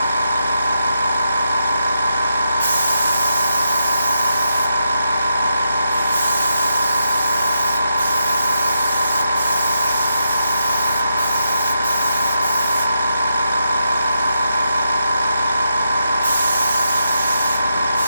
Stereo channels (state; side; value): inverted; both; correlation -0.84